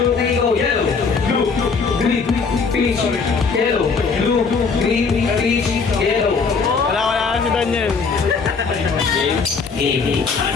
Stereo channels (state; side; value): quieter; right; 5.0 dB